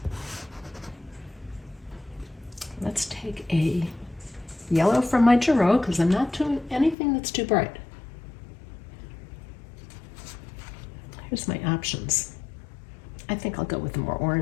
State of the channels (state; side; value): drops out; right; at 7.0 s